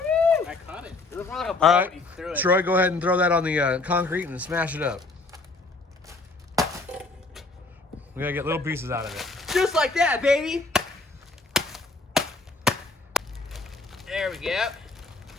I caught it. It was more like a All ball right, when you threw it. Troy, go ahead and throw that on the concrete and smash it up. We gotta get little pieces out of it. Just like that, baby. There we go.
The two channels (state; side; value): quieter; right; 3.4 dB